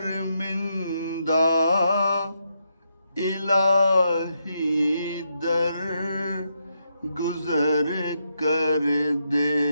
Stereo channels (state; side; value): inverted; both; correlation -0.80